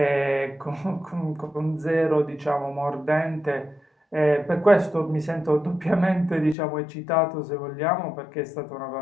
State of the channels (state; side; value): drops out; right; at 6.6 s